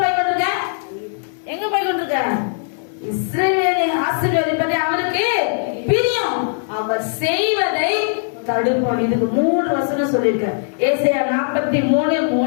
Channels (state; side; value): silent; right; digital silence